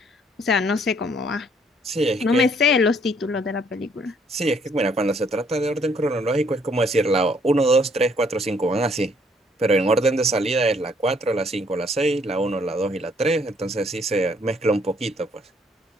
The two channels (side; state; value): both; normal; correlation 0.65